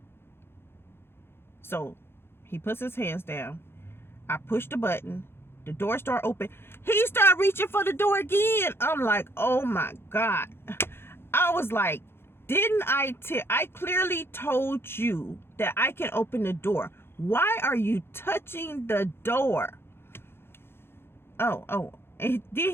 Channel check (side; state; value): right; late; 0.11 ms